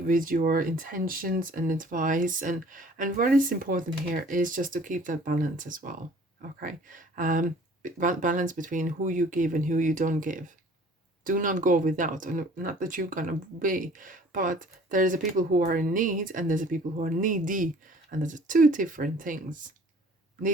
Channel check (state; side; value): normal; both; correlation 0.51